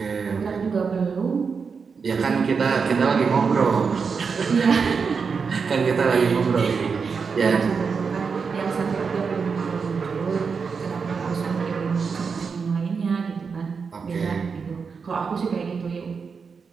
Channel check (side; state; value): left; quieter; 5.5 dB